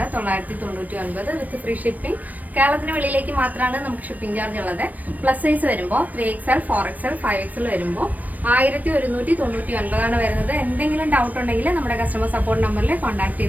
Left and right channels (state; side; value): late; left; 0.079 ms